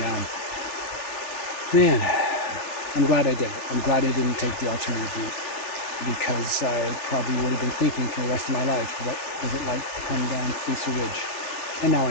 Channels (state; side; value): late; right; 3.4 ms